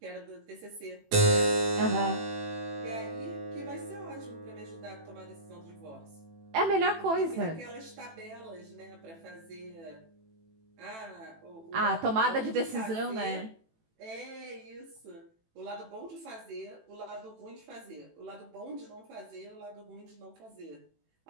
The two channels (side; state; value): left; late; 18 ms